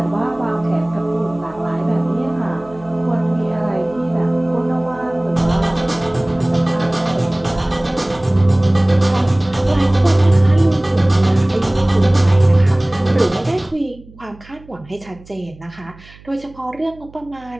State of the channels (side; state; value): right; noise; hum, 23 dB below the sound